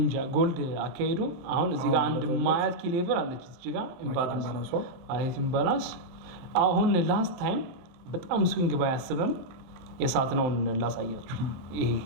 እንጃ ጎልድ አካሄዱ አሁን እዚህ ጋር አንድ ማያት ኪ ሌቨል አለች እዚህ ጋር ኢምባላንስ አሁን ላስት ታይም በጣም ስዊንግ ባያስብም የሳት ነው ላሳያችሁ። ይሄ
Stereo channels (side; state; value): left; late; 23 ms